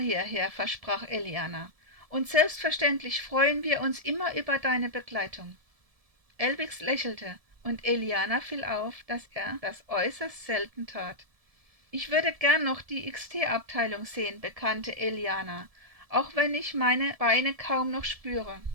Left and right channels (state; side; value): late; left; 1.7 ms